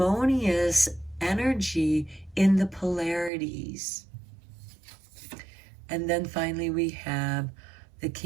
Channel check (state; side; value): drops out; left; at 3.3 s